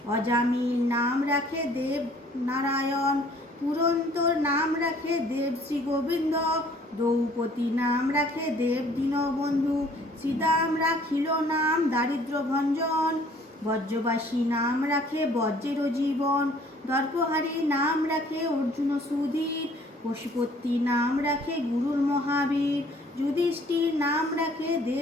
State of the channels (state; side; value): normal; both; correlation 0.57